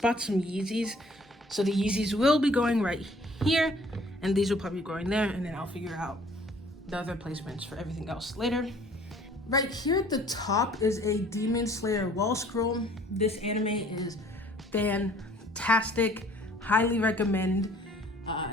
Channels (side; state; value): both; normal; correlation 0.55